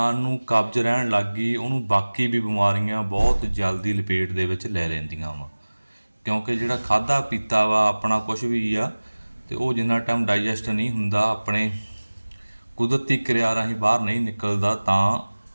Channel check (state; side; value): inverted; both; correlation -1.00